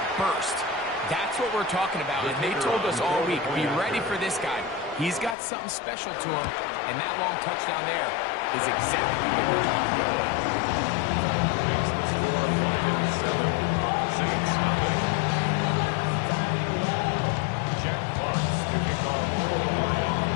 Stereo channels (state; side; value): drops out; right; at 5.4 s